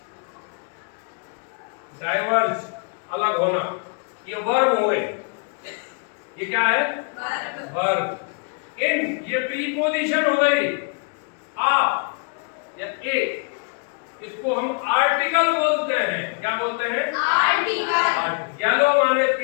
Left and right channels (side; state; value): right; quieter; 39.3 dB